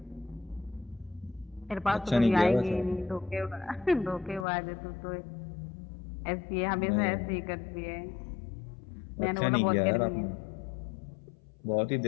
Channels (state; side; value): drops out; right; at 4.5 s